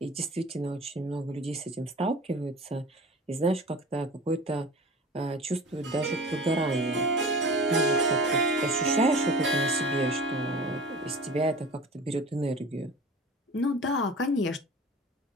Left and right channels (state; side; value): normal; both; correlation 0.39